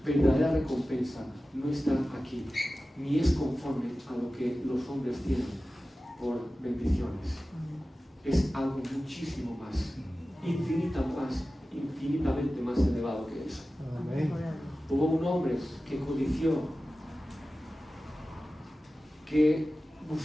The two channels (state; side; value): normal; both; correlation 0.95